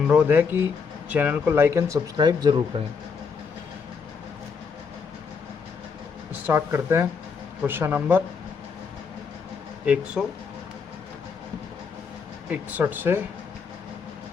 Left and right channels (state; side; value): quieter; right; 5.7 dB